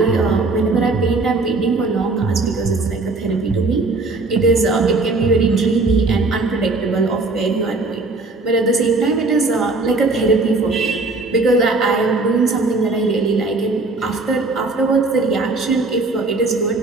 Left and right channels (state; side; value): quieter; left; 3.4 dB